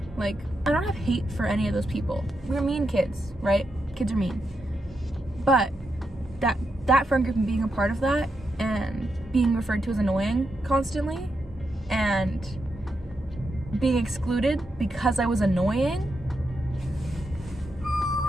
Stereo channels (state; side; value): normal; both; correlation 0.84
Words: Like, I don't have hate for any of those people. We're mean kids, right? Kids are mean. But that friend group and being a part of that, and being referred to as annoying constantly, and being excluded because I was annoying,